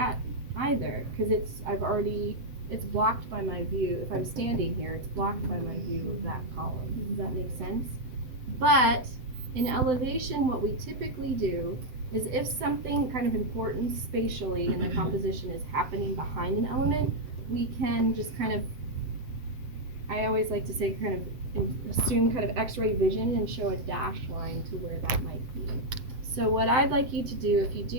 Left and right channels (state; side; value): late; left; 7.8 ms